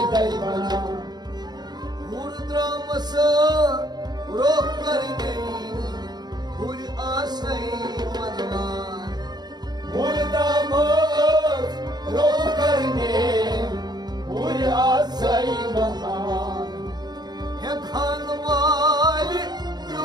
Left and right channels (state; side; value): late; left; 0.20 ms